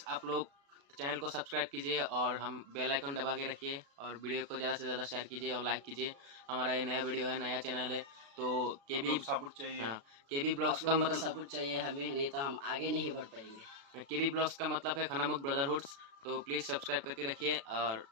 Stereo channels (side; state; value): left; late; 36 ms